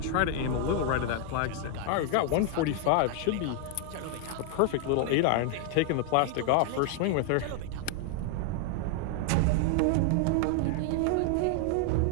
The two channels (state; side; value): different; both; correlation 0.00